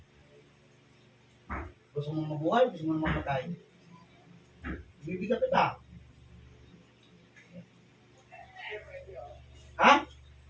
Gusto mo mabuhay, gusto mo mamatay. Bibigyan kita. Ha?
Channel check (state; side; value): identical; both; correlation 1.00